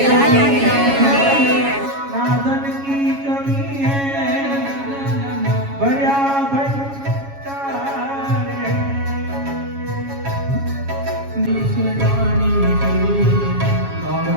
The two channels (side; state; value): left; late; 7.2 ms